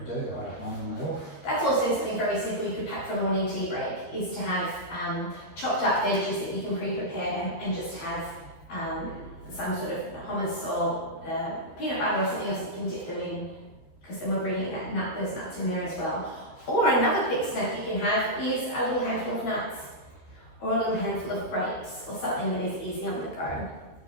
do. I don't mind them at all. That's also something very simple you could pack for a morning tea break, is to have chopped up veggies that you can pre-prepare and just have some sort of hummus or peanut butter or something else that you can dip them in, because then we're bringing those nuts in there as well. Or another quick snack you can have is a little handful of nuts or a little handful of grapes or something that is easy on the go.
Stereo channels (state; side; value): late; right; 12 ms